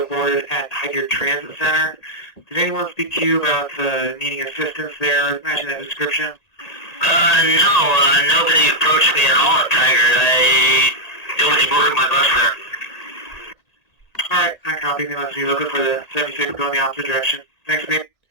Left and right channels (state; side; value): late; right; 1.8 ms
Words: boarded at Highgate Transit Center. Did anyone speak to you about needing assistance there, matching that description? No, nobody approached me at all at Tiger. Nobody boarded my bus there. Alright, I copy. They must be looking for the 76 going the opposite direction. Thanks, mate.